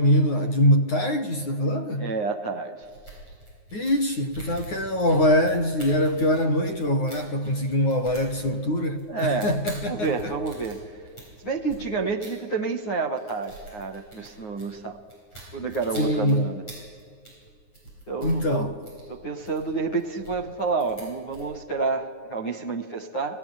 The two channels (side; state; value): right; late; 9.6 ms